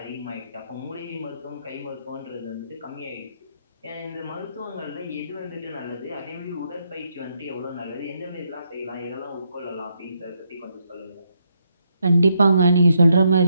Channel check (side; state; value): both; inverted; correlation -0.78